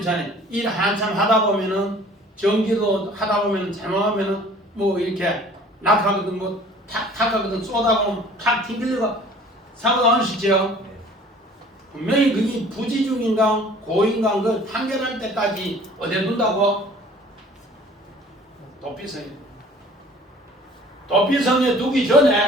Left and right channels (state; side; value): normal; both; correlation 0.50